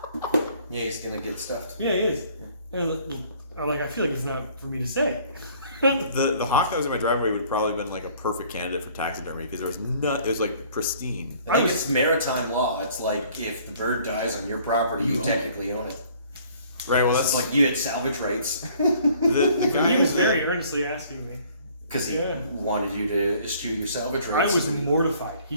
Yeah, he's gonna get stuffed. Yeah, he is. And I'm like, I feel like it's not for me to say. The hawk that was in my driveway would probably been like a perfect candidate for taxidermy because there was it was like pristine. I think it's maritime law. It's like if the bird dies on your property, you You own technically own it. Right. Well, It's that's like you had salvage rights the guy He was who's very earnestly asking me. because he Yeah. wanted you to eschew your salvage I rights. was mortified.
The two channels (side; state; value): both; inverted; correlation -0.57